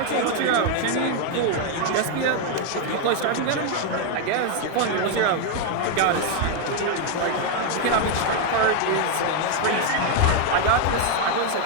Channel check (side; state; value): both; different; correlation 0.01